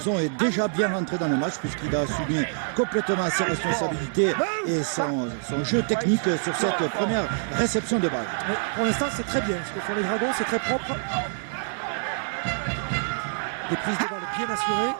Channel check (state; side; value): silent; left; 56 dB below the other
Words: est déjà bien rentré dans le match puisqu'il a assumé complètement ses responsabilités et son jeu technique sur cette première réception de balle. Mais pour l'instant, c'est très bien. Ce que font les Dragons, c'est très propre. Des prises de balle bien assurées.